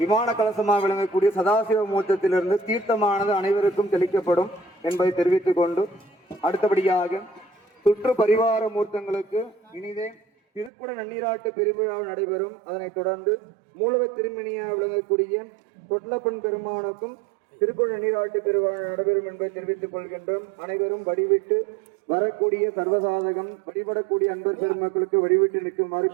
கலசமாக விளங்கக்கூடிய சதாசிவ மூர்த்தத்திலிருந்து தீர்த்தமானது அனைவருக்கும் தெளிக்கப்படும் என்பதை தெரிவித்துக் கொண்டு அடுத்தபடியாக சுற்று பரிவார மூர்த்தங்களுக்கு இனிதே திருக்குட நன்னீராட்டு பெருவிழா நடைபெறும். அதனைத் தொடர்ந்து மூலவ திருமணியாக விளங்கக்கூடிய தொட்லப்பன் பெருமானுக்கும் திருக்குட நன்னீராட்டு பெருவிழா நடைபெறும் என்பதை தெரிவித்துக் கொள்கின்றோம். அனைவரும் வழிவிட்டு வரக்கூடிய சர்வசாதகம் வழிபடக்கூடிய அன்பர் பெருமக்களுக்கு வழிவிட்டு நிற்குமாறு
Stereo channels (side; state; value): left; drops out; at 10.7 s